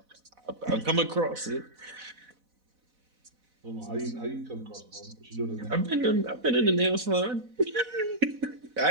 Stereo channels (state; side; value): late; left; 4.0 ms